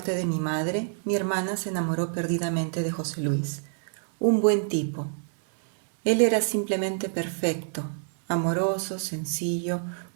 de mi madre, mi hermana se enamoró perdidamente de José Luis, un buen tipo. Él era simplemente perfecto, amoroso, sencillo,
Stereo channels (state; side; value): silent; left; 60 dB below the other